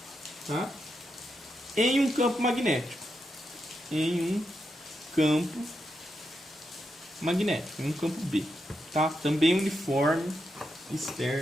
tá? Em um campo magnético. Em um campo magnético, em um campo B. Tá? Também uniforme,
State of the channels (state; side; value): normal; both; correlation 0.84